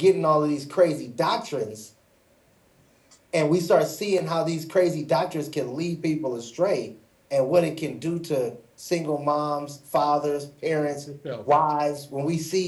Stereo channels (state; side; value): identical; both; correlation 1.00